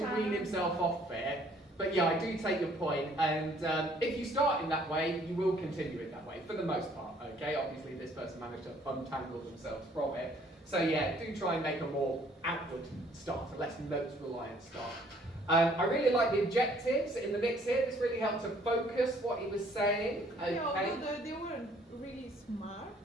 wean himself off it. But yeah, I do take your point, and if you start in that way, you will continue it that way, for the most part, okay? Obviously, this person managed to untangle themselves from it. So yeah, do try and make a more outward start, a less notes-reliant start. I really like the objectives in the mix here. This really helped to focus what he was saying. Okay. Yeah, although they weren't really smart.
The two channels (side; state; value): both; normal; correlation 0.61